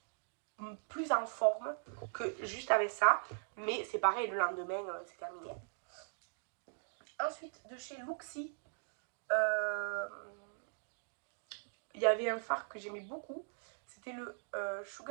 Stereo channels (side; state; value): left; silent; digital silence